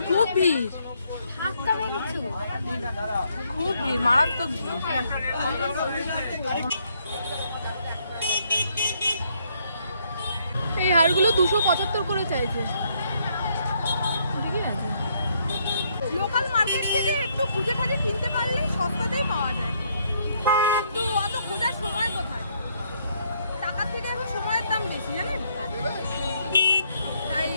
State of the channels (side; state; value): both; inverted; correlation -0.71